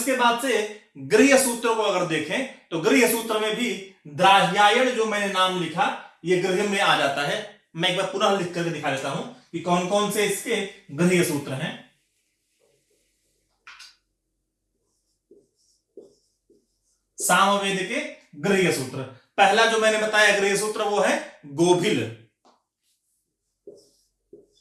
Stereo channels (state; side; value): identical; both; correlation 1.00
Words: बाद से गृह्य सूत्र को अगर देखें तो गृह्य सूत्र में भी द्राह्यायन जो मैंने नाम लिखा ये गृह्य में आ जाता है। मैं एक बार पुनः लिख करके दिखा देता हूं कि कौन कौन से इसके गृह्य सूत्र हैं। सामवेद के गृह्य सूत्र, पहला जो मैंने बताया गृह्य सूत्र वो है गोभिल।